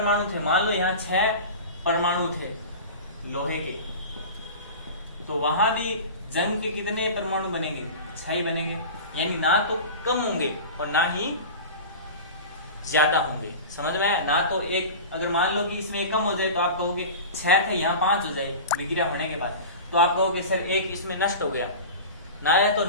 थे, मान लो यहाँ 6 परमाणु थे लोहे के, तो वहां भी जंग के कितने परमाणु बनेंगे? 6 ही बनेंगे। यानी ना तो कम होंगे और ना ही ज्यादा होंगे। समझ में आया? ना तो एक, अगर मान लो कि इसमें एक कम हो जाए तो आप कहोगे 6 थे यहाँ 5 हो जाए विक्रिया होने के बाद, तो आप कहोगे सर एक इसमें नष्ट हो गया। ना या तो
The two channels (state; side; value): inverted; both; correlation -0.33